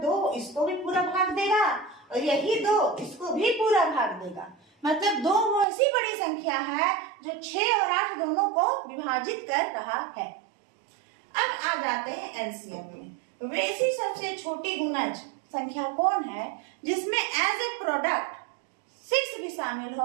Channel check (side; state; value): left; drops out; at 5.7 s